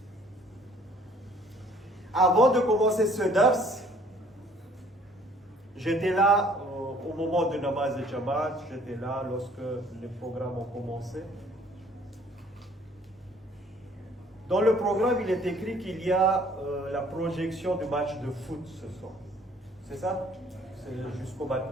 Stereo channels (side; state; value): both; normal; correlation 0.57